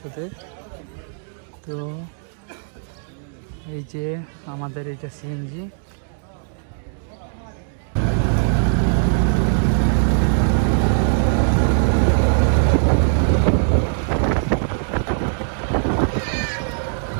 তো এই যে আমাদের এইটা সিএনজি।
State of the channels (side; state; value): left; silent; digital silence